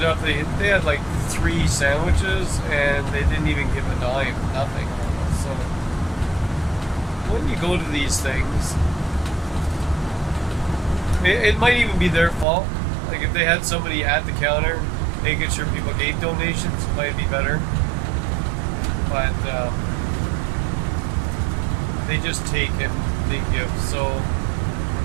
up they had like 3 sandwiches, and they didn't even give a dime, nothing. So when you go to these things, it might even be their fault. Like if they had somebody at the counter making sure people gave donations, it might be better. But they just take and they give. So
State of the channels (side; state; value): left; drops out; at 12.5 s